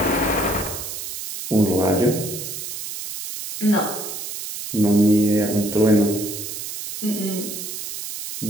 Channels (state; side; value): noise; right; hiss, 8 dB below the sound